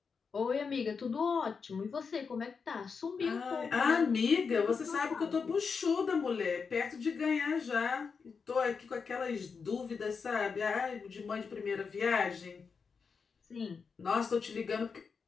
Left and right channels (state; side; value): quieter; right; 5.5 dB